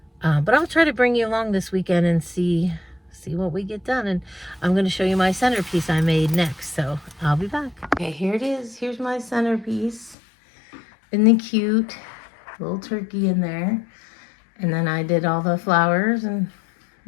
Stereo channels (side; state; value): right; drops out; at 10.2 s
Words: but I'll try to bring you along this weekend and see what we get done. And I'm going to show you my centerpiece I made next. So I'll be back. Okay, here it is. Here's my centerpiece. Isn't it cute? Little turkey in there. And then I did all the flowers and